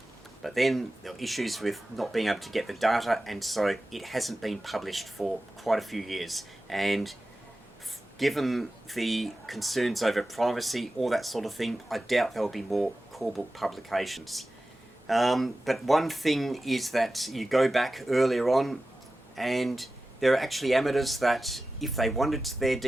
But then there were issues with not being able to get the data, and so it hasn't been published for quite a few years. And given the concerns over privacy, all that sort of thing, I doubt there will be more call book publications. But one thing is that you go back earlier on, and there are actually amateurs that, if they wanted their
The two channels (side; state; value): both; normal; correlation 0.94